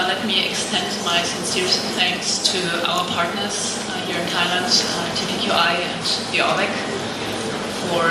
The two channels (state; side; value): identical; both; correlation 1.00